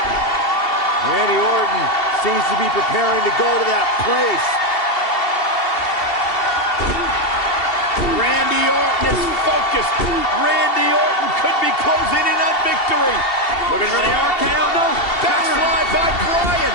Randy Orton seems to be preparing to go to that place. Randy Orton is focused. Randy Orton could be closing in on victory. Looking for the RKO. No. Backslide by Bryan.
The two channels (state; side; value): late; right; 2.7 ms